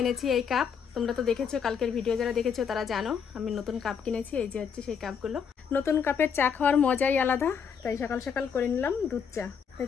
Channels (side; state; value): right; quieter; 6.9 dB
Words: এনেছি এই কাপ। তোমরা তো দেখেছো, কালকের ভিডিও যারা দেখেছো তারা জানো আমি নতুন কাপ কিনেছি। এই যে হচ্ছে সেই কাপগুলো। নতুন কাপের চা খাওয়ার মজাই আলাদা, তাই সকাল সকাল করে নিলাম দুধ চা। তাই